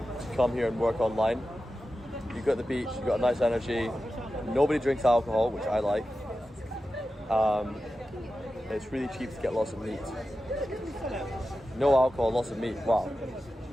come here and work online. You've got the beach, you've got a nice energy, nobody drinks alcohol, which I like. It's really cheap to get lots of meat. No alcohol, lots of meat, wow.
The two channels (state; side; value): normal; both; correlation 0.93